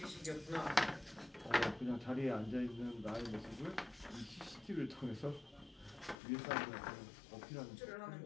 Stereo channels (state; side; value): drops out; right; at 6.2 s